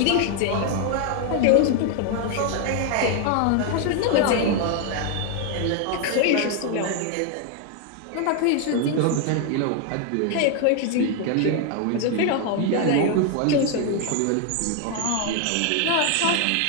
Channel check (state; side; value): different; both; correlation 0.01